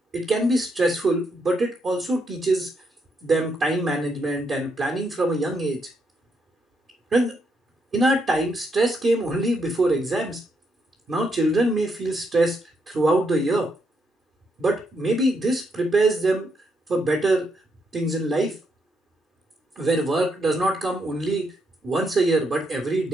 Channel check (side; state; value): both; normal; correlation 0.78